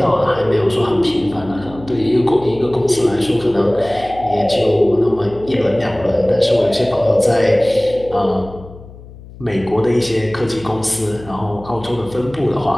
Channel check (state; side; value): noise; left; hum, 18 dB below the sound